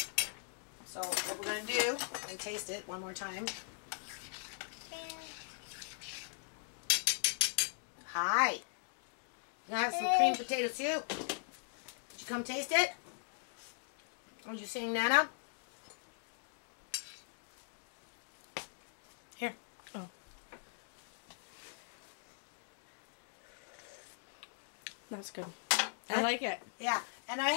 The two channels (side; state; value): right; silent; digital silence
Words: So, what we're going to do, we're going to taste it one more time. Hi. You gonna have some cream potato soup? Did you come taste it? Are you saying Nana? Here. Oh. That's good. I like it. Yeah. And I